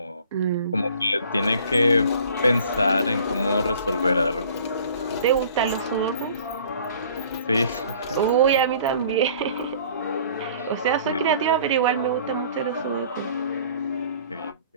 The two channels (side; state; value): both; inverted; correlation -0.51